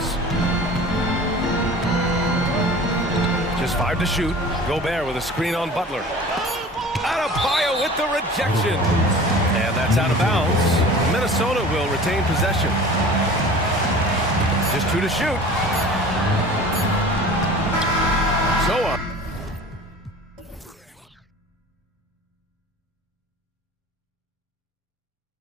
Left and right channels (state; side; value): normal; both; correlation 0.41